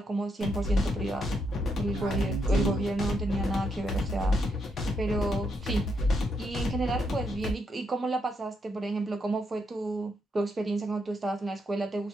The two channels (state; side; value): normal; both; correlation 0.79